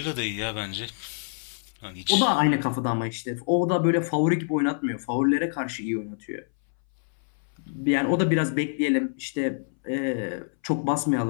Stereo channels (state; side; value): silent; right; 61 dB below the other